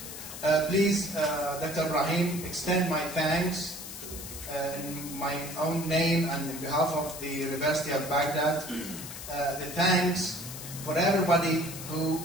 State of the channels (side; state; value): left; noise; hiss, 10 dB below the sound